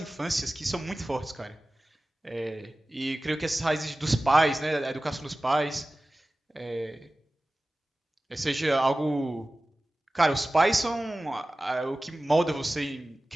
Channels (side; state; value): both; normal; correlation 0.97